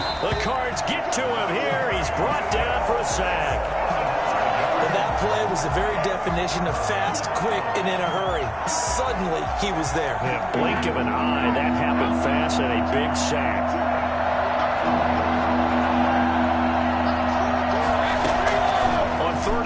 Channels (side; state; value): both; identical; correlation 1.00